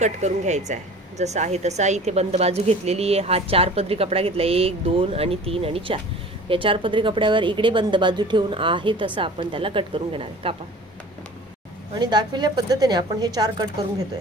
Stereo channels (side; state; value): both; normal; correlation 0.43